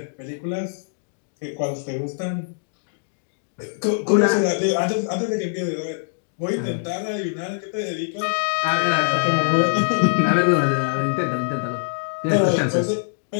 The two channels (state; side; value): silent; right; digital silence